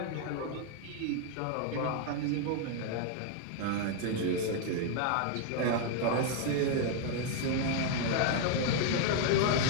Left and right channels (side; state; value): both; different; correlation 0.00